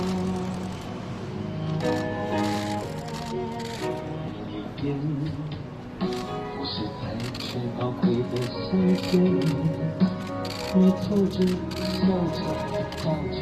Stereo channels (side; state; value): both; identical; correlation 1.00